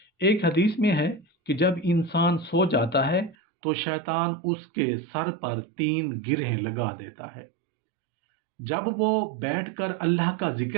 ایک حدیث میں ہے کہ جب انسان سو جاتا ہے تو شیطان اس کے سر پر 3 گرہیں لگا دیتا ہے۔ جب وہ بیٹھ کر اللہ کا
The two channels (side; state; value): left; drops out; at 3.4 s